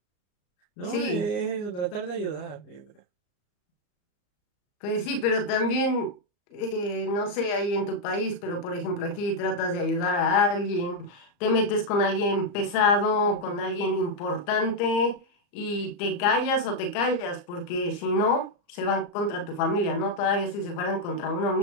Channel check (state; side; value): late; right; 34 ms